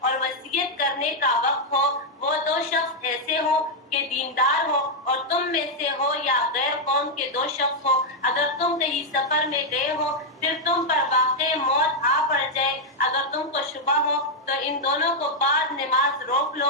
وصیت کرنے کا وقت ہو. وہ دو شخص ایسے ہو کہ دیندار ہو اور تم میں سے ہو یا غیر قوم کے دو شخص ہو. اگر تم کہیں سفر میں گئے ہو پھر تم پر واقع موت آ پڑ جائے اگر تم کو شبہ ہو تو ان دونوں کو بعد نماز روک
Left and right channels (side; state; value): both; normal; correlation -0.01